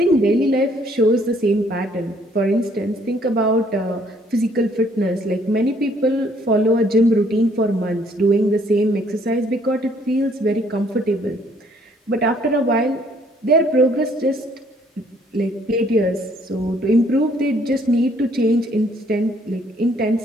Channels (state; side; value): normal; both; correlation 0.64